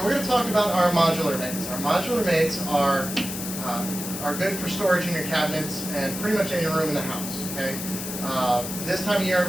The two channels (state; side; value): noise; left; hiss, 7 dB below the sound